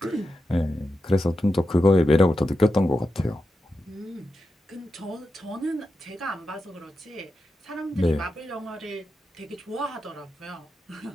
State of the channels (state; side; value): normal; both; correlation 0.89